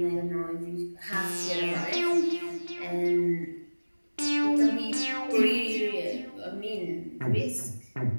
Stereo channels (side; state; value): both; inverted; correlation -1.00